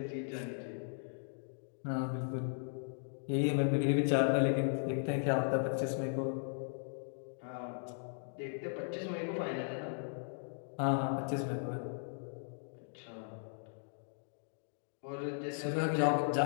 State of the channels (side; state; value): right; silent; digital silence